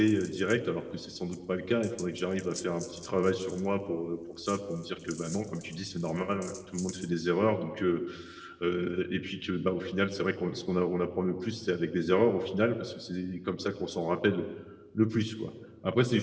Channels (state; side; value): identical; both; correlation 1.00